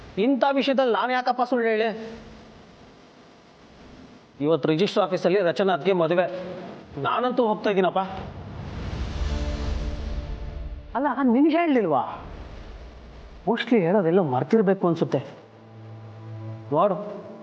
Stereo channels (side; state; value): both; identical; correlation 1.00